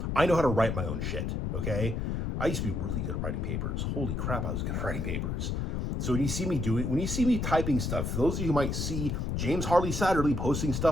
I know how to write my own shit, okay? I used to be really good at writing papers. Holy crap, I was good at writing papers. So when you see me typing stuff, for those of you who might see James Harley Satterley posting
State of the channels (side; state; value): left; noise; rumble, 1 dB below the sound